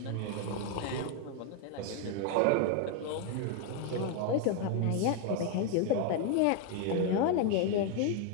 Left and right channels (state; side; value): different; both; correlation 0.00